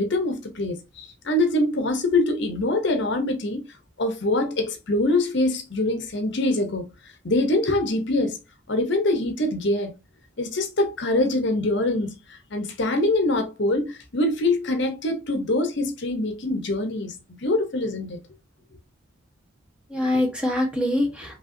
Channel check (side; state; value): both; normal; correlation 0.37